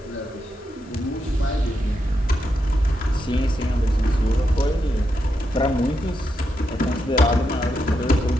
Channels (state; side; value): normal; both; correlation 0.84